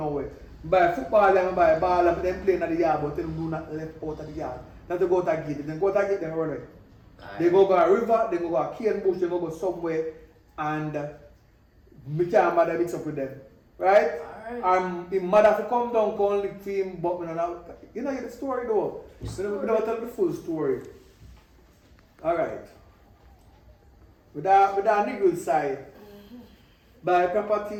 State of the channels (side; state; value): both; identical; correlation 1.00